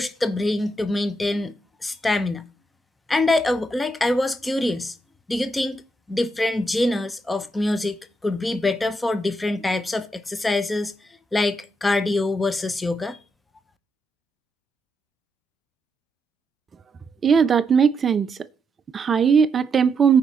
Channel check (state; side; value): normal; both; correlation 0.81